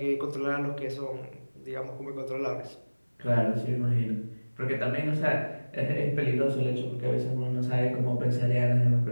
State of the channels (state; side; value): inverted; both; correlation -1.00